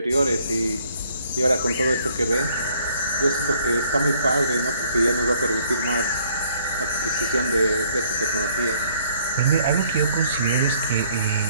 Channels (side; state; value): both; inverted; correlation -0.63